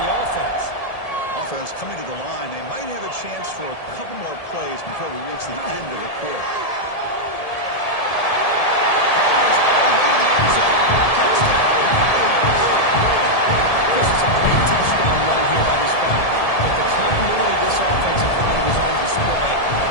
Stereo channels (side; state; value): right; late; 1.7 ms